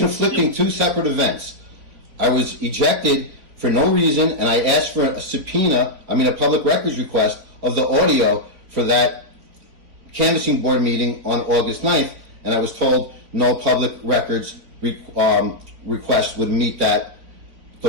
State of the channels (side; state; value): left; late; 4.3 ms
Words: 2 separate events. I was ejected for no reason, and I asked for a public records request of the audio for that canvassing board meeting on August 9th, and I was told no public records request would meet that